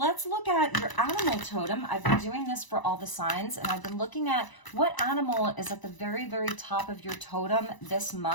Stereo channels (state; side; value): late; right; 1.0 ms